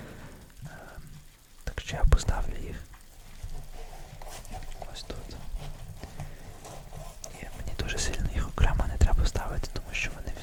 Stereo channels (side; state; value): both; identical; correlation 1.00